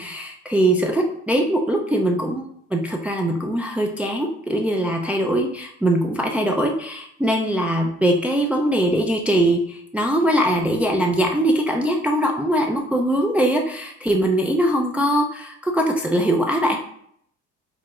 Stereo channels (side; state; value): both; normal; correlation 0.66